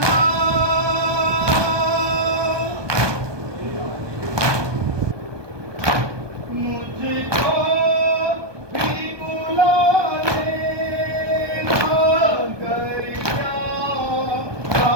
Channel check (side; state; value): left; late; 1.2 ms